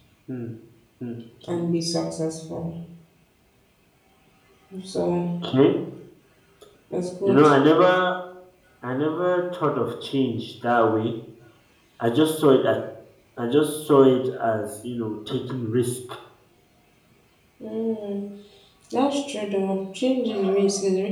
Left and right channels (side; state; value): both; identical; correlation 1.00